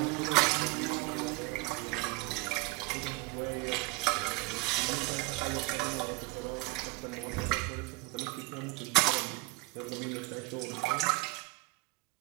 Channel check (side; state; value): left; quieter; 23.1 dB